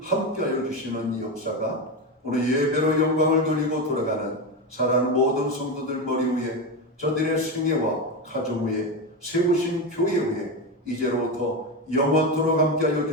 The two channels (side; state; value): both; normal; correlation 0.16